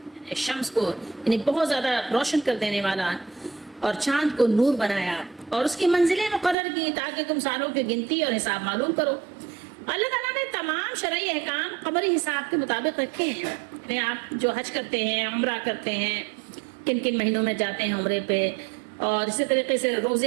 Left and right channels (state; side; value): drops out; left; at 6.6 s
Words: شمس کو یعنی بہت زیادہ روشن کر دینے والا, اور چاند کو نور بنایا اور اس کی منزلیں مقرر کی تاکہ تم سالوں کی گنتی اور حساب معلوم کرو. اللہ تعالیٰ نے تمام شرعی احکام قمری حساب کے مطابق رکھے ہیں. یعنی آپ جو حج کرتے ہیں, عمرہ کرتے ہیں, کن کن مہینوں میں جاتے ہیں عمرے پہ, اور اسی طریقے سے